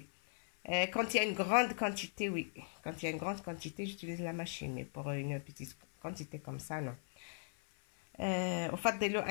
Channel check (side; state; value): right; silent; 52 dB below the other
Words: Quand il y a une grande quantité, oui. Quand il y a une grande quantité, j'utilise la machine. Mais pour une petite quantité comme ça, non. أفضل